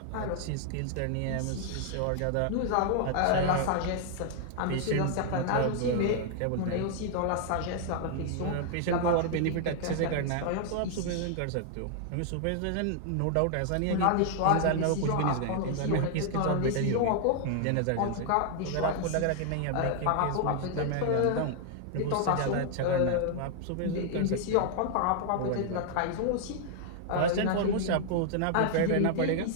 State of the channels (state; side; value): different; both; correlation 0.00